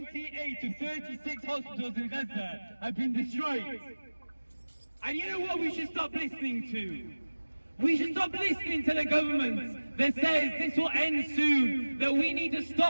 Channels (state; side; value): inverted; both; correlation -1.00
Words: of 36 hospitals in Gaza have been destroyed. And you know what we should stop listening to? We should stop listening to the government that says this will end soon, that we need to